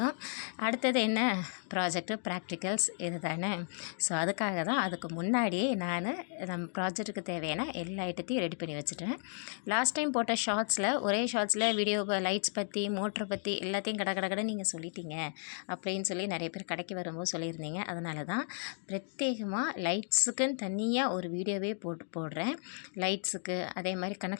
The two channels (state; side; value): silent; right; 55 dB below the other